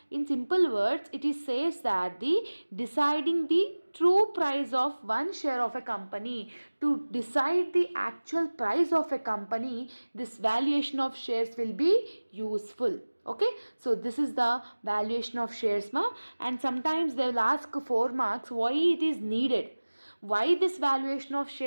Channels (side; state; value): both; inverted; correlation -1.00